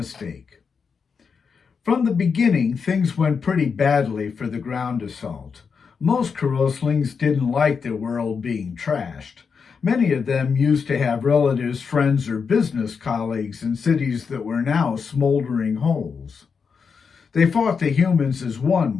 From the beginning, things went pretty badly for the ground assault. Most Karoslings didn't like their world being trashed. Many of them used to have relatives, friends, or business colleagues in cities that were now smoldering holes. They fought the humans as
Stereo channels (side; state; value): right; quieter; 5.8 dB